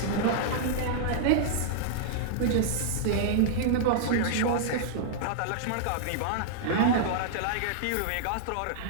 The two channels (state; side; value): different; both; correlation -0.01